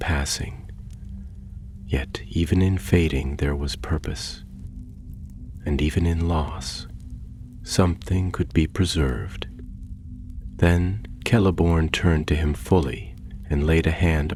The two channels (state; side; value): identical; both; correlation 1.00